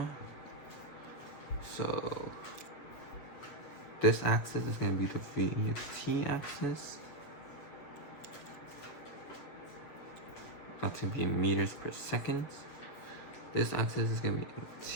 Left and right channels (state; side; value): late; right; 7.4 ms